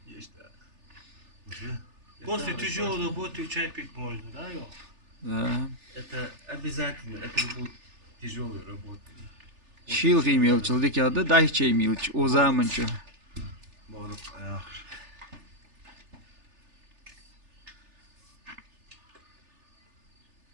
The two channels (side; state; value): left; late; 3.4 ms